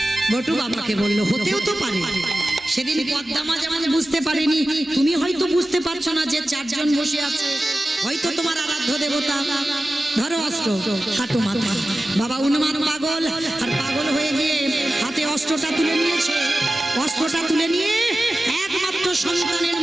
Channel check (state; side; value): normal; both; correlation 0.95